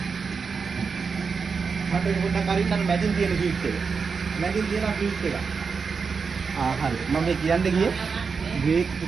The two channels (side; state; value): left; quieter; 5.3 dB